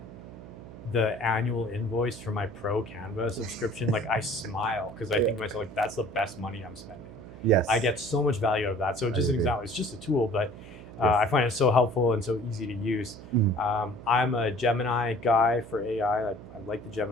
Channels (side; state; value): right; noise; hum, 16 dB below the sound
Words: the annual invoice for my pro Canva subscription, like I smile because I think to myself, like, that's the best money I'm spending. Yes. I get so much value out of that. So just an example, it's just a tool, but I find it so helpful and so easy to use. I'm a Gemini guy for AI. I like the